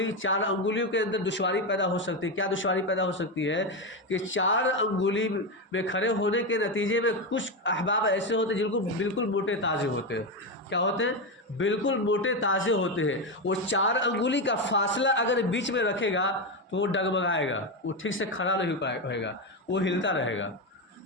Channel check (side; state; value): both; normal; correlation 0.12